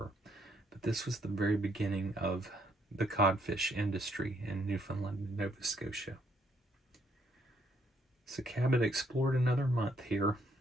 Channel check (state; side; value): normal; both; correlation 0.71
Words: But this was the very beginning of the codfish industry in Newfoundland and Nova Scotia. So Cabot explored another month here